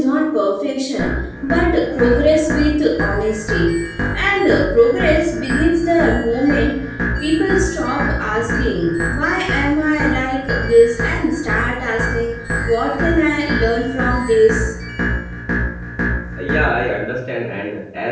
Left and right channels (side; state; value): both; identical; correlation 1.00